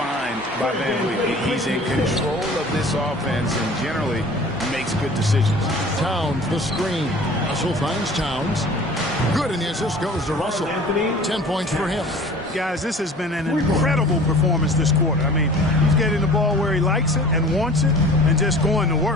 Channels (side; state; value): both; normal; correlation 0.45